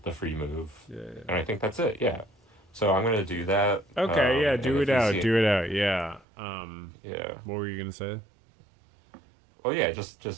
the free move. Yeah. And I think that's it, yeah. So I'm gonna do that. Okay, yeah, And do if it you out, see it, do it out, yeah. yeah. What were you gonna say? Well, yeah,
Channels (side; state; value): left; drops out; at 6.2 s